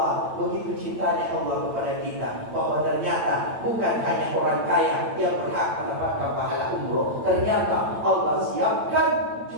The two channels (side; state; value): left; late; 8.9 ms